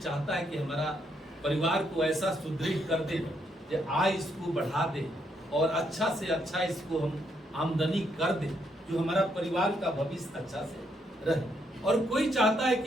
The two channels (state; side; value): normal; both; correlation 0.75